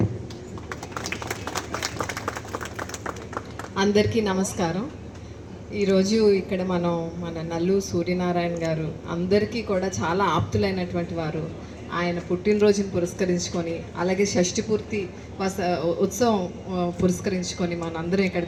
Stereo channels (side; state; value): both; identical; correlation 1.00